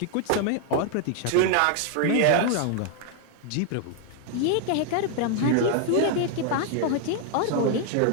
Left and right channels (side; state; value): both; different; correlation 0.00